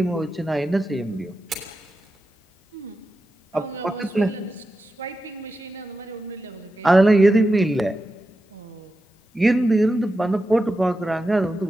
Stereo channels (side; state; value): both; normal; correlation 0.90